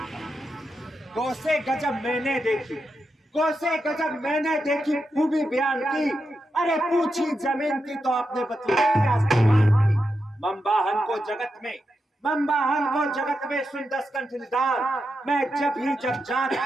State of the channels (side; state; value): both; normal; correlation 0.87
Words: कोसे गजब मैंने देखी, कोसे गजब मैंने देखी, खूबी बयान की। अरे पूछी जमीन की तो आपने बतलाई आसमान की। मम्बाहन को जगत में, मम्बाहन को जगत में सुन 10 कंठ निदान। मैं जब जात